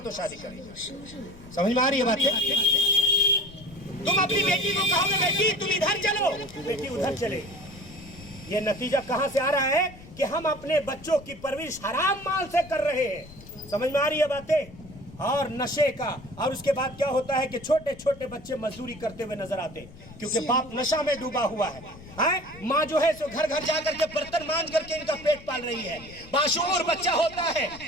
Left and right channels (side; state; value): left; noise; rumble, 19 dB below the sound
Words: تو شادی کریں گے۔ سمجھ میں آ رہی ہے بات؟ تم اپنی بیٹی کو کہو گے بیٹی تم ادھر چلو، بیٹی ادھر چلے۔ یہ نتیجہ کہاں سے آ رہا ہے کہ ہم اپنے بچوں کی پرورش حرام مال سے کر رہے ہیں۔ سمجھ میں آ رہی ہے باتیں؟ اور نشے کا، اور اس کے بعد کیا ہوتا ہے کہ چھوٹے چھوٹے بچے مزدوری کرتے ہوئے نظر آتے ہیں کیونکہ باپ نشہ میں ڈوبا ہوا ہے۔ ماں جو ہے سو گھر گھر جا کر کے برتن مانج کر کے ان کا پیٹ پال رہی ہے، باشعور بچہ ہوتا ہے۔